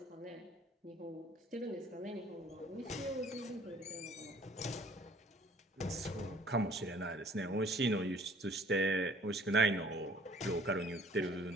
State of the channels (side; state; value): both; normal; correlation 0.55